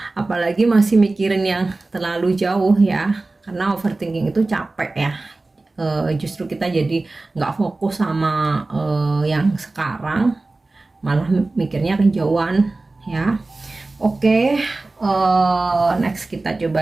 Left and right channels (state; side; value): quieter; left; 3.2 dB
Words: apalagi masih mikirin yang terlalu jauh ya. Karena overthinking itu capek ya. Justru kita jadi nggak fokus sama yang sekarang, malah mikirnya kejauhan ya. Oke, next kita coba